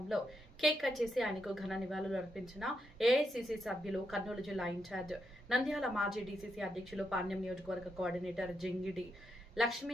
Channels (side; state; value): both; normal; correlation 0.82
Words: కేక్ కట్ చేసి ఆయనకు ఘన నివాళులు అర్పించిన ఏఐసిసి సభ్యులు, కర్నూలు జిల్లా ఇన్ఛార్జ్, నంద్యాల మాజీ డీసీసీ అధ్యక్షులు, పాణ్యం నియోజకవర్గ కోఆర్డినేటర్ జింగిడి లక్ష్మీ